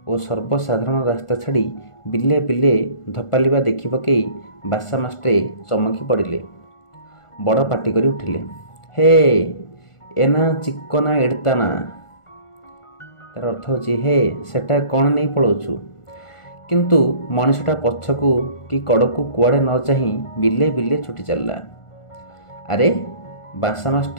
और सर्वसाधारण रास्ता छाड़ी बिले बिले धपालिबा देखि पकई बासा मास्ट्रे चमकी पड़िले। बड़ पाटी करी उठिले, हे एना चिकना एड़ताना। तार अर्थ होची हे सेटा कौन नहीं पलाउछु। किंतु मनुष्यटा पछकू कि कड़कू कुआड़े न चाही बिले बिले छुटी चलला। अरे बासा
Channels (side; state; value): right; late; 1.4 ms